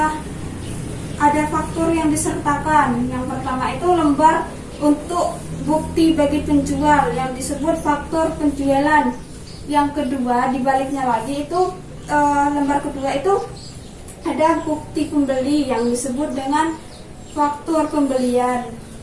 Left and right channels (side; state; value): both; identical; correlation 1.00